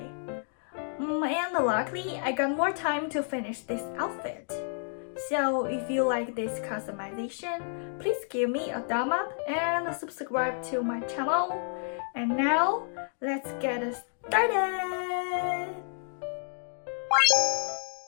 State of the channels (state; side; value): silent; right; digital silence